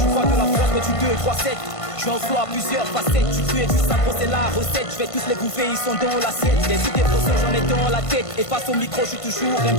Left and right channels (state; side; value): late; right; 1.5 ms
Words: vois de la force mais tu 2, 3, 7. Je en flow à plusieurs facettes. Tu crées du sang, c'est la recette. Je vais tous les bouffer, ils sont dans l'assiette. Les idées poissons, j'en ai dans la tête. Et face au micro, je suis toujours un